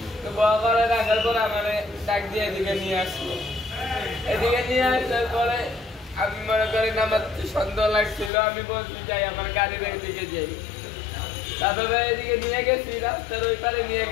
তো বড় করে রাখার পরে আমার ডাক দিয়ে এদিকে নিয়ে আসলো। এদিকে নিয়ে আসার পরে আমি মনে করি আমার সন্দেহ লাগছিল, আমি বলছি যাই আমার গাড়ির এদিকে যাই। তারপরে এদিকে নিয়ে গেছি, রাস্তার ওই পারে নিয়ে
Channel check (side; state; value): right; drops out; at 8.3 s